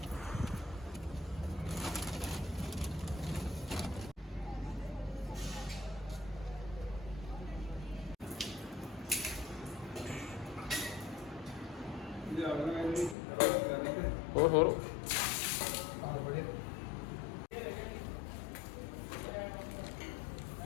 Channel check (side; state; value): right; drops out; at 13.2 s